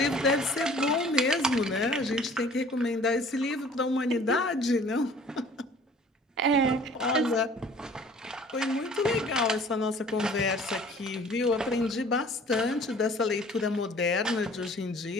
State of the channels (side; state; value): both; normal; correlation 0.51